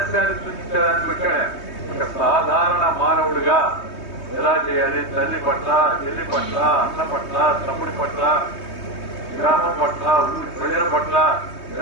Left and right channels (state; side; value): late; right; 3.2 ms